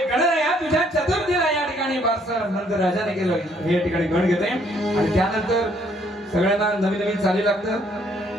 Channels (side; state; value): both; normal; correlation 0.66